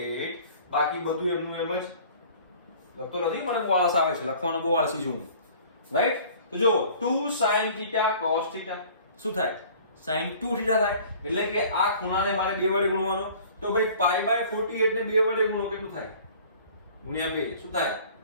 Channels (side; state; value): both; inverted; correlation -0.49